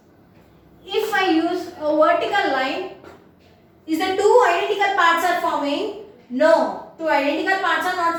If I use a vertical line, is the 2 identical parts are forming? No. 2 identical parts are not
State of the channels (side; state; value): both; identical; correlation 1.00